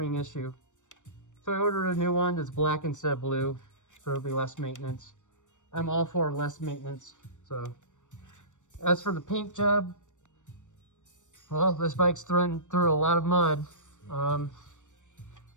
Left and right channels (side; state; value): right; late; 0.85 ms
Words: issue. So I ordered a new one that's black instead of blue. So it'll be less maintenance. I'm all for less maintenance. So as for the paint job, well, this bike's through a lot of mud. I